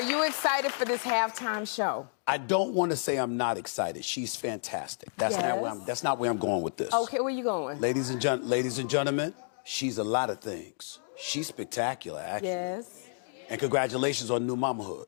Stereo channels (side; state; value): right; silent; digital silence